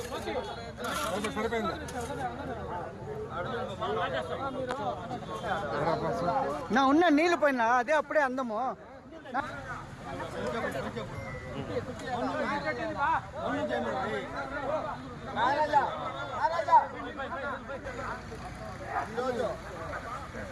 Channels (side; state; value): both; identical; correlation 1.00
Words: సరిపోయింది. నా ఉన్న నీళ్ళు పోయినా అదే అప్పుడే అందము.